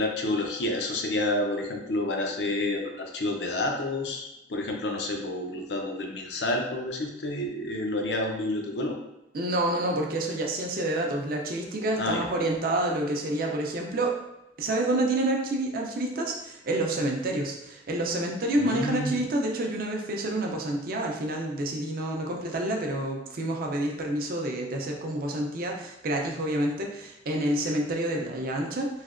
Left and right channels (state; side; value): normal; both; correlation 0.36